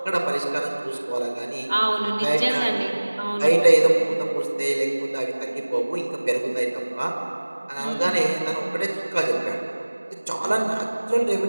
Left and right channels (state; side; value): inverted; both; correlation -1.00